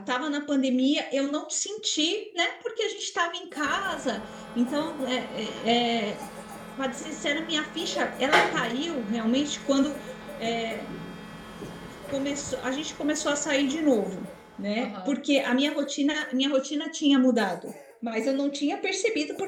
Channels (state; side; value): identical; both; correlation 1.00